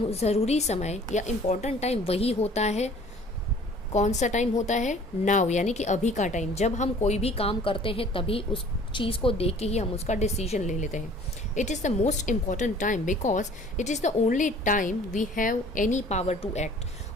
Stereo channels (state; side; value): normal; both; correlation 0.51